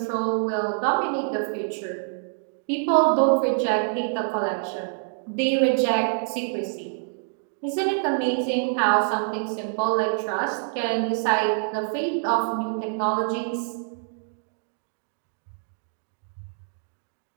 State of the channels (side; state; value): left; silent; digital silence